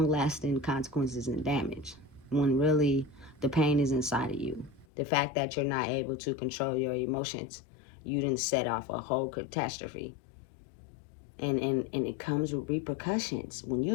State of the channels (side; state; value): right; drops out; at 4.9 s